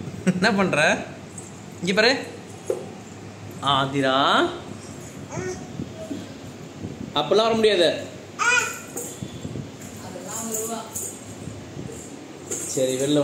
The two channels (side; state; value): both; identical; correlation 1.00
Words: என்ன பண்ணுற? இங்கே பாரு ஆதிரா. அப்பெல்லாம் வர முடியாது. சரி வெளில